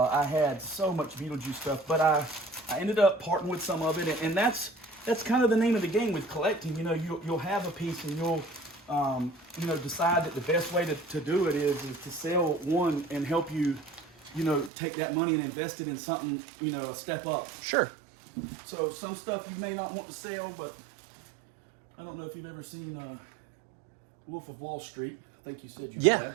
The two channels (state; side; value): drops out; left; at 14.7 s